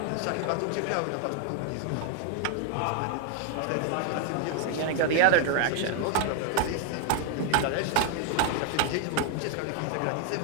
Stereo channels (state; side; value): different; both; correlation 0.00